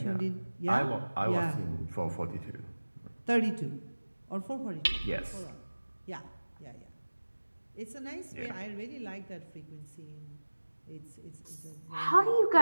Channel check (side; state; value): both; inverted; correlation -1.00